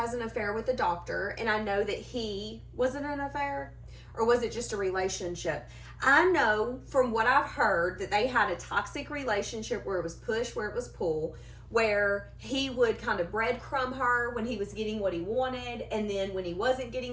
an affair with the doctor, and I know that was it an affair? Or was it just a relationship? I know from what I've heard that they had a toxic relationship where it was push, where it was pull, where he would kind of breadcrumb her when he was getting what he wanted, and then when he wasn't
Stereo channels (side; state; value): both; identical; correlation 1.00